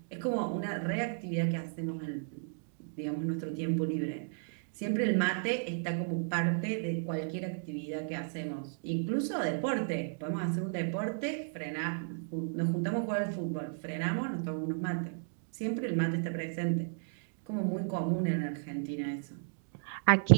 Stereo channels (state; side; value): silent; left; digital silence